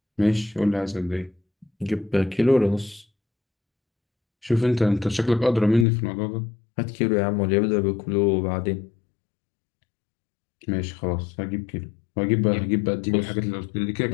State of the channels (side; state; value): right; drops out; at 5.9 s